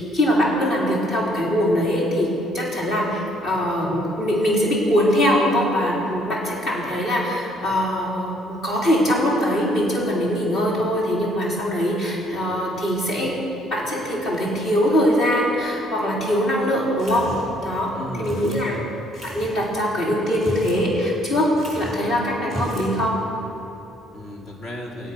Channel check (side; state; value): both; normal; correlation 0.65